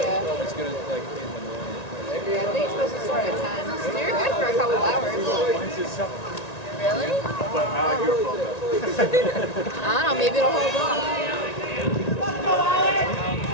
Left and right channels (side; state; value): right; late; 1.9 ms